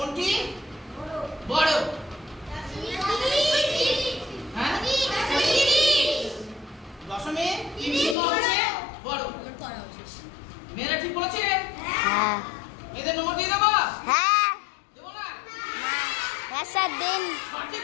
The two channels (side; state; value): right; drops out; at 8.2 s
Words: বড়? হ্যাঁ, 0.30 হচ্ছে বড়। মেয়েরা ঠিক বলেছে? হ্যাঁ। এদের নম্বর দিয়ে দেবো? হ্যাঁ। দেবো না? হ্যাঁ স্যার দিন। সঠিক